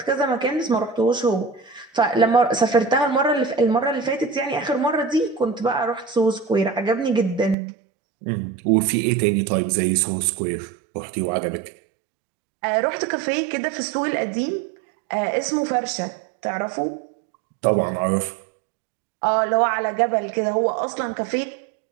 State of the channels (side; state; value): left; drops out; at 7.6 s